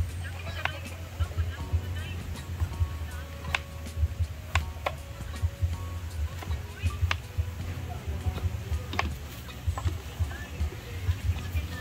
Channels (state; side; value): identical; both; correlation 1.00